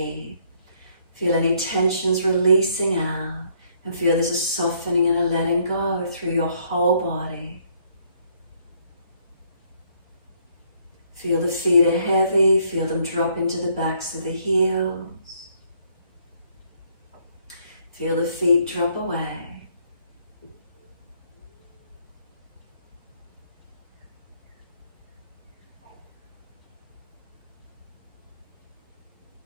Feel any tensions releasing out. And feel there's a softening and a letting go through your whole body. Feel the feet are heavy, feel them drop into the backs of the heels. Feel the feet drop away.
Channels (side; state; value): both; inverted; correlation -0.67